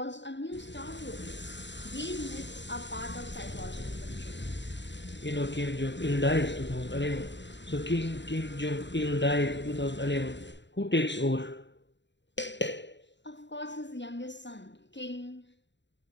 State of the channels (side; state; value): right; late; 0.52 ms